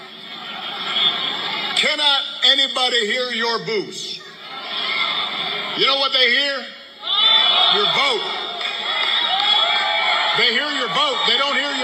Cannot anybody hear your boos? You know what they hear? Your vote. They hear your vote. They don't hear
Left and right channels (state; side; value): identical; both; correlation 1.00